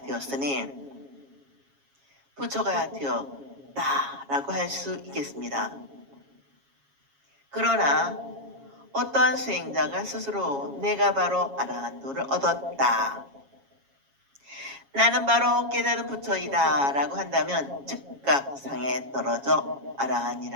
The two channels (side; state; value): left; late; 7.3 ms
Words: 되었으니 부처가 되었다라고 할 수 있겠습니다. 그러나 어떠한 수행자가 스스로 내가 바로 아라한도를 얻었다, 나는 바로 깨달은 부처이다 라고 한다면 즉각 상에 떨어져